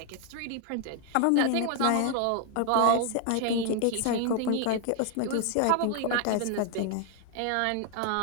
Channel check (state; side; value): different; both; correlation 0.00